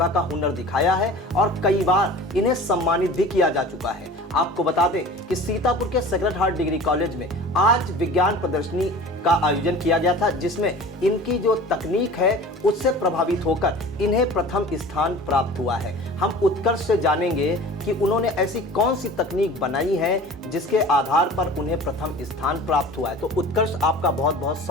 का हुनर दिखाया है और कई बार इन्हें सम्मानित भी किया जा चुका है। आपको बता दें कि सीतापुर के सेक्रेड हार्ट डिग्री कॉलेज में आज विज्ञान प्रदर्शनी का आयोजन किया गया था, जिसमें इनकी जो तकनीक है उससे प्रभावित होकर इन्हें प्रथम स्थान प्राप्त हुआ है। हम उत्कर्ष से जानेंगे कि उन्होंने ऐसी कौन सी तकनीक बनाई है जिसके आधार पर उन्हें प्रथम स्थान प्राप्त हुआ है। तो उत्कर्ष, आपका बहुत बहुत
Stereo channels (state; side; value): normal; both; correlation 0.40